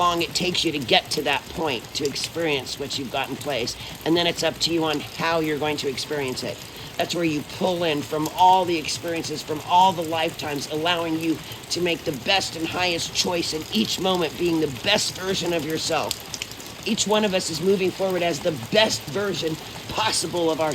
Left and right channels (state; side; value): identical; both; correlation 1.00